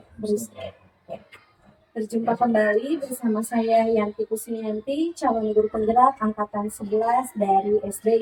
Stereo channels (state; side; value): identical; both; correlation 1.00